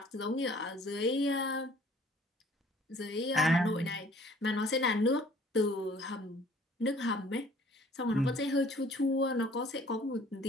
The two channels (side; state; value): both; normal; correlation 0.55